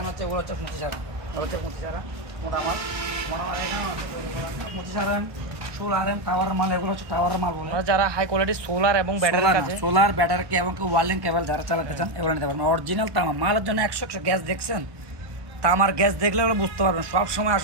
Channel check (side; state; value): left; late; 1.1 ms